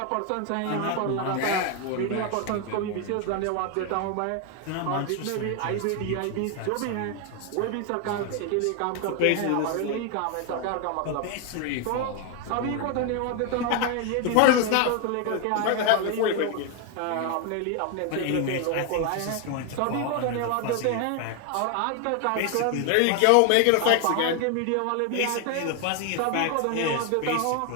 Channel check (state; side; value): different; both; correlation 0.01